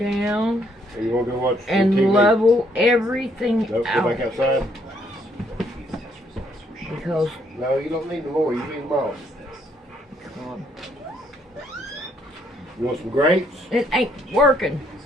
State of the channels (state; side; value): normal; both; correlation 0.70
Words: Or you want to go watch And TV? level everything Nope, out. go back outside. Because, No, you don't need them more. You need them all. come on. You want some grapes? It ain't working.